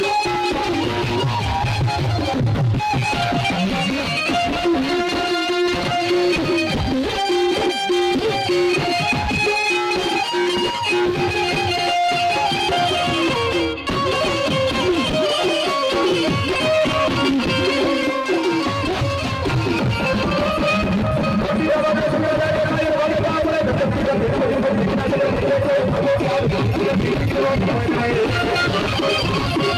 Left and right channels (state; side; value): identical; both; correlation 1.00